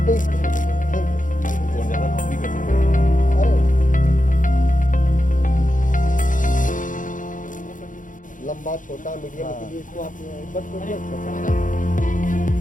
लंबा छोटा मीडियम के लिए इसको आप बट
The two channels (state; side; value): late; right; 0.38 ms